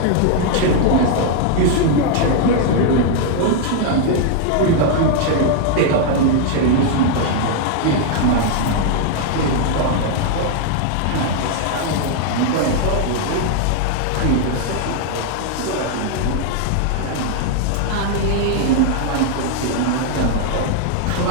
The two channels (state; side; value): different; both; correlation 0.00